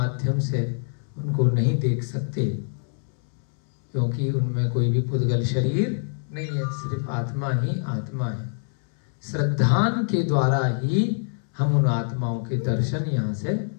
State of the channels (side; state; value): right; silent; 62 dB below the other